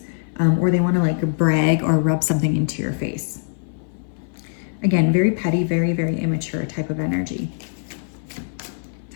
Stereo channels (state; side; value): silent; right; 58 dB below the other